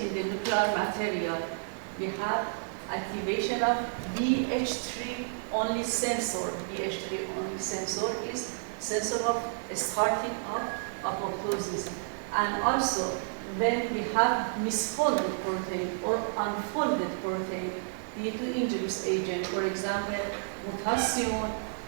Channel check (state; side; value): silent; left; digital silence